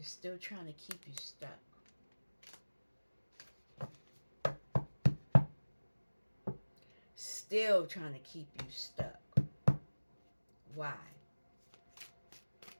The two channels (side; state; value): both; inverted; correlation -1.00